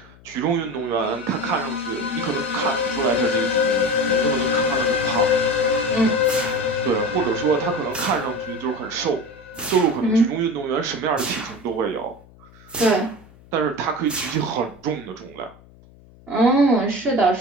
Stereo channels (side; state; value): left; noise; hum, 24 dB below the sound